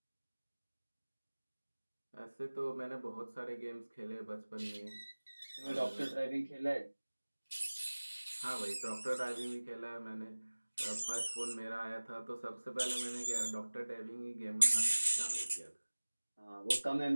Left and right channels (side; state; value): both; inverted; correlation -1.00